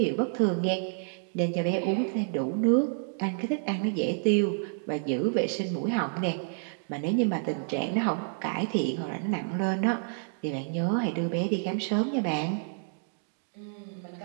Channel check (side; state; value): left; silent; digital silence